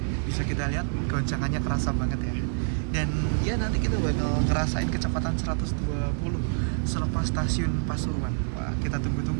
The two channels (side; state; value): left; silent; digital silence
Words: Bisa kita lihat goncangannya kerasa banget ya. Dan ya nanti kita bakal ngerasain kecepatan 120 selepas stasiun Pasuruan. Wah kita